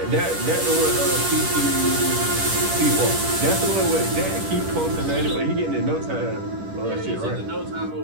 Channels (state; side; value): late; left; 10 ms